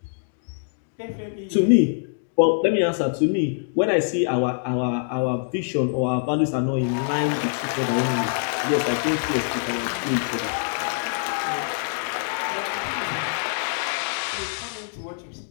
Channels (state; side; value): silent; right; digital silence